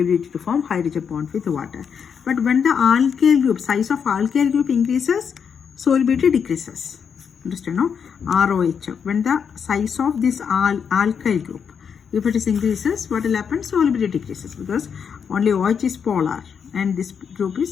to form hydrogen bond with water. But when the alkyl group, size of alkyl group increases, solubility decreases. Understand, no? ROH. When the size of this alkyl group, if it is increases, what will happen? Solubility decreases, because only OH is polar and this group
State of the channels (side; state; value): right; quieter; 6.9 dB